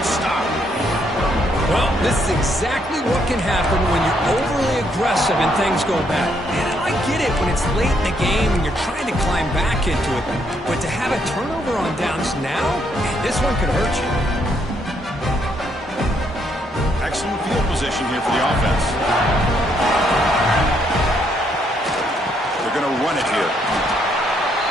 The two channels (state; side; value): normal; both; correlation 0.73